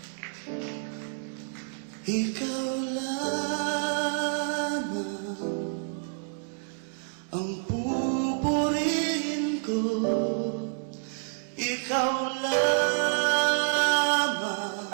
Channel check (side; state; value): left; silent; 59 dB below the other